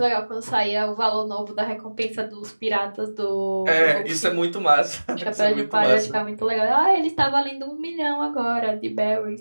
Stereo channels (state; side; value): inverted; both; correlation -1.00